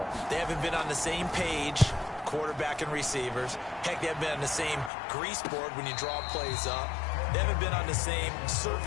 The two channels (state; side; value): drops out; right; at 4.9 s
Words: They haven't been on the same page, quarterback and receivers. Heck, they haven't been on the same grease board when you draw plays up. They haven't been on the same